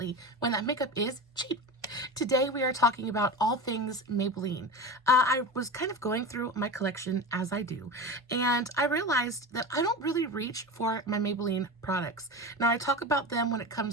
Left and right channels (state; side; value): normal; both; correlation 0.26